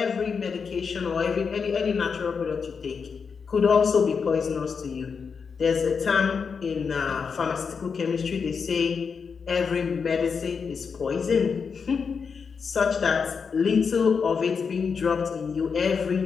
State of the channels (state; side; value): quieter; right; 5.8 dB